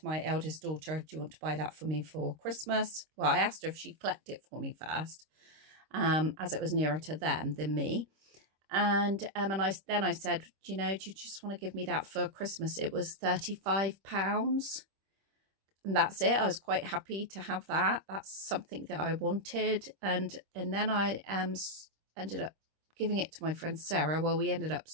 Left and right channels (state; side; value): late; left; 26 ms